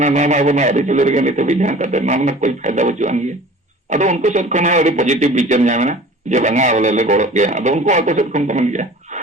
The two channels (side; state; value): both; normal; correlation 0.44